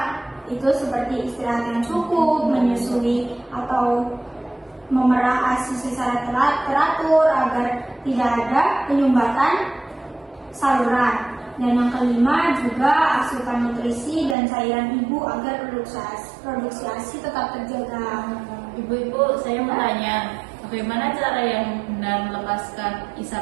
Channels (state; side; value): drops out; left; at 14.4 s